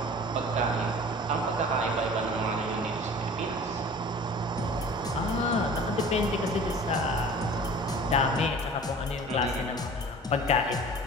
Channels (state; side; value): normal; both; correlation 0.43